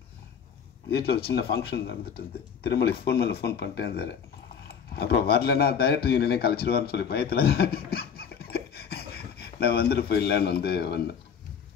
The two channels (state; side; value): quieter; right; 7.1 dB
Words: வீட்டில் ஒரு சின்ன ஃபங்க்ஷன் நடந்துட்டு இருந்து திருமலை ஃபோன் மேலே ஃபோன் பண்ணிட்டே இருந்தார். அப்புறம் வரலன்னா டைரக்டர் யூனியனே கழிச்சிருவார்னு சொல்லி பயத்தில் நான் வந்துட்டு போயிடலான்னு வந்தேன்.